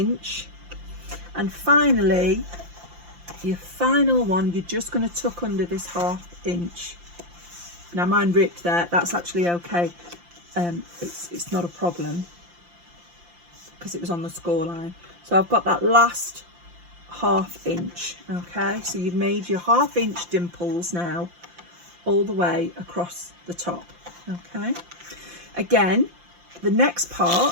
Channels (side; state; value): left; late; 5.8 ms